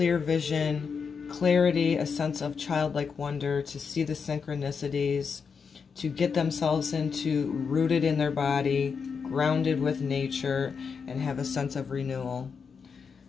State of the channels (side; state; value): right; quieter; 5.9 dB